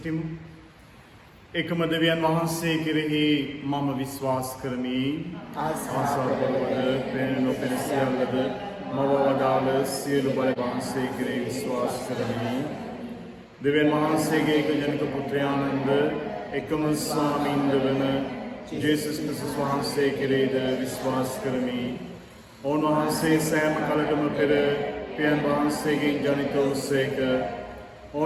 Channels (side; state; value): both; identical; correlation 1.00